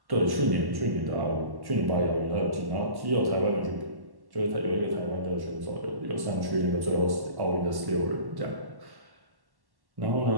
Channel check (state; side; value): late; left; 1.1 ms